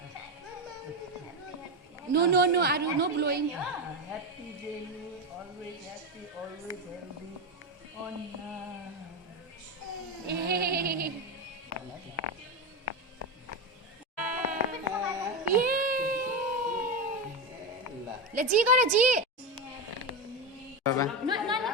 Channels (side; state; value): both; normal; correlation 0.14